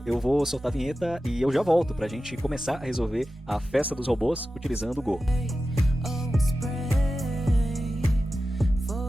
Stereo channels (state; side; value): normal; both; correlation 0.93